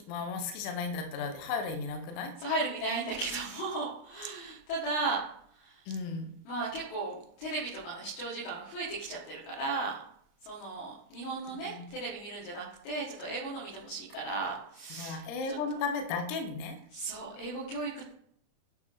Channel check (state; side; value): late; right; 29 ms